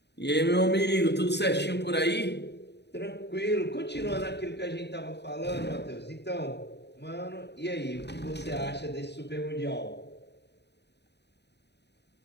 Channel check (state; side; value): late; right; 0.49 ms